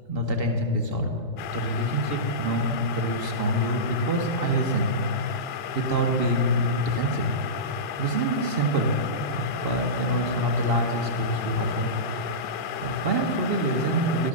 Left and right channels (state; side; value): late; right; 1.8 ms